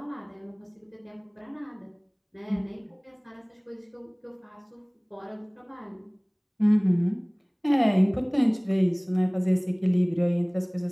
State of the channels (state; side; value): identical; both; correlation 1.00